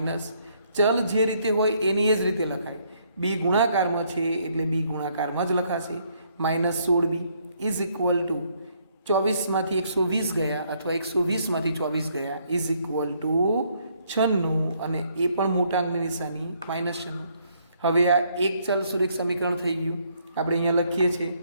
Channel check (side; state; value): both; inverted; correlation -0.69